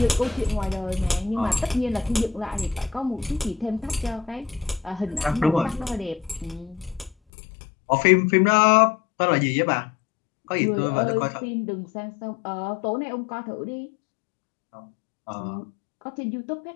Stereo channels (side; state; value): right; drops out; at 7.2 s